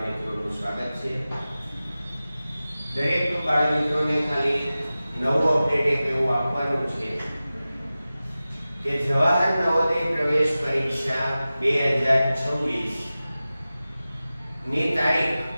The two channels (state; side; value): inverted; both; correlation -0.96